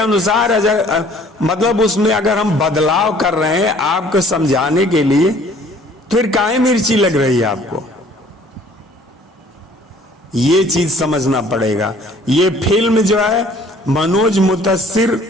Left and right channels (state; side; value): normal; both; correlation 0.55